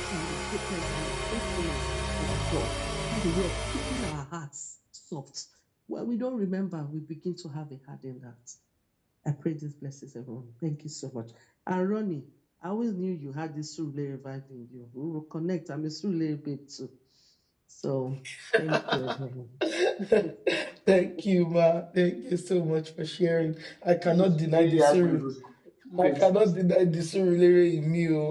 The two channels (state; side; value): identical; both; correlation 1.00